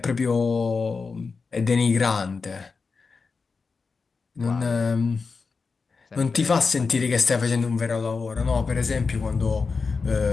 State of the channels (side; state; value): right; quieter; 4.7 dB